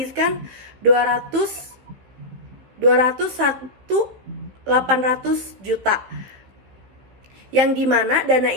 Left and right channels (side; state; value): left; late; 15 ms